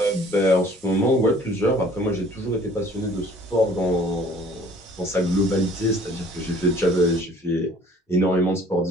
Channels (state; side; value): normal; both; correlation 0.53